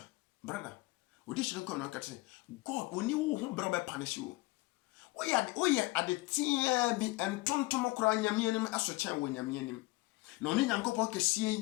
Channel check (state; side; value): quieter; right; 22.0 dB